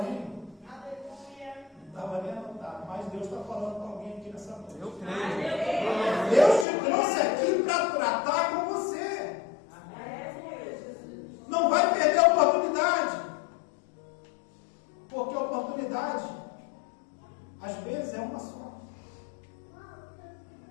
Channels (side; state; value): right; drops out; at 6.7 s